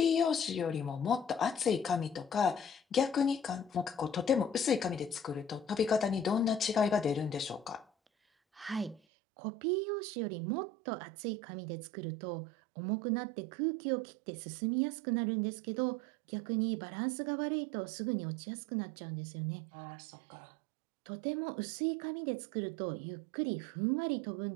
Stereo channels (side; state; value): left; drops out; at 9.0 s